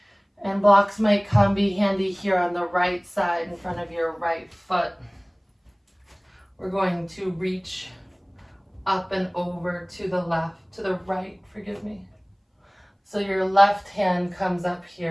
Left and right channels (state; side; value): identical; both; correlation 1.00